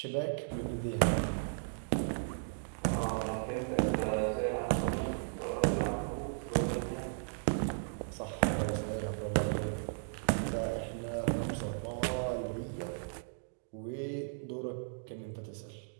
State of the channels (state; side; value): silent; left; digital silence